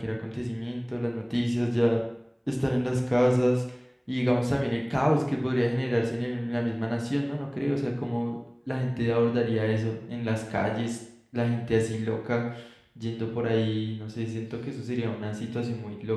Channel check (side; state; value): both; identical; correlation 1.00